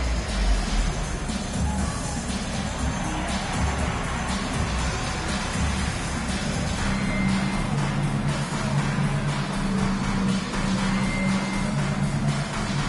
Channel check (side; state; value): both; identical; correlation 1.00